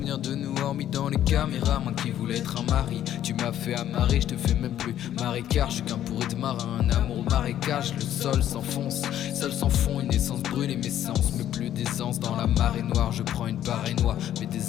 de nous hormis dans les caméras. Moi qui voulais être un mari, tu m'as fait amarrer, je te fais même plus marécage. Je suis qu'un pourri de marin, un amour au marécage. Le sol s'enfonce, seul sans fond, une essence brûle et mes sens. Mais plus d'essence dans la marée noire, je prends une barre noire. Mes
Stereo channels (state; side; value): quieter; right; 11.4 dB